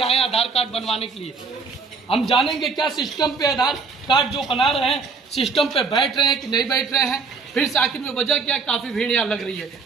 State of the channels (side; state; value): left; quieter; 4.8 dB